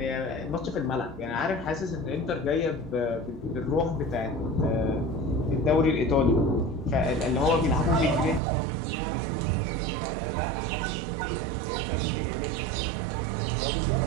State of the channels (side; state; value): left; drops out; at 8.4 s